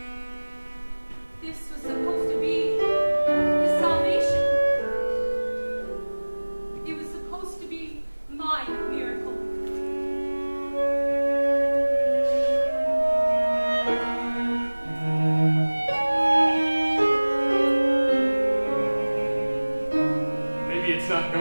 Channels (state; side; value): inverted; both; correlation -1.00